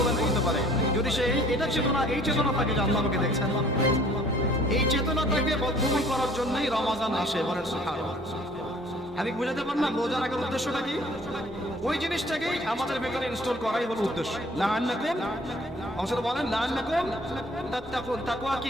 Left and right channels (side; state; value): both; normal; correlation 0.55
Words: করতে পারে? যদি সে এটা চেতনা, এই চেতনা থাকে যে আল্লাহ আমাকে দেখছেন, এই চেতনাটাকে বদ্ধমূল করার জন্যই রমাদান আসে। বলেন সুবহানাল্লাহ। আমি বুঝাতে পারলাম রোজা রাখার উদ্দেশ্যটা কি? ওই জিনিসটাকেই আমাদের ভেতরে ইনস্টল করাই হলো উদ্দেশ্য। লাআন্নাকুম, অংশটা বলেন লাআন্নাকুম তাত্তাকুন। তাকওয়া